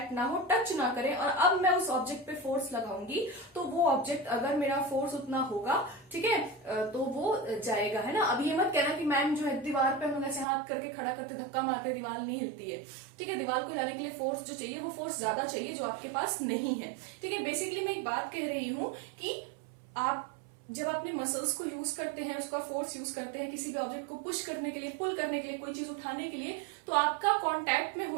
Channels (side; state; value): left; drops out; at 10.5 s